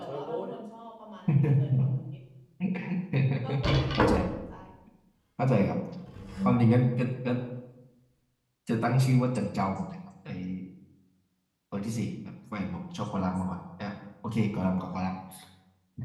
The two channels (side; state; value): both; identical; correlation 1.00